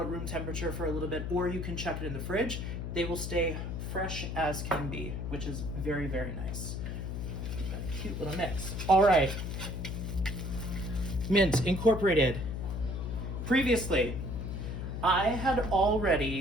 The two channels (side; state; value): left; noise; hum, 4 dB below the sound